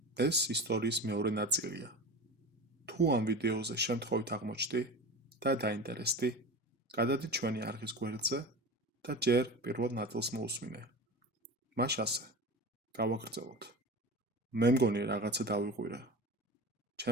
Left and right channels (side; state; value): both; normal; correlation 0.30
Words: ეს ისტორიის მეორე ნაწილია. თუ ამ ვიდეოზე შემთხვევით აღმოჩნდი და დაინტერესდი, გადადი ჩვენი არხის გვერდზე და ჯერ პირველ ნაწილს მოусმინე. მას ასე გავაგრძელოთ. მე მგონი რაღაცა დავიღვირე.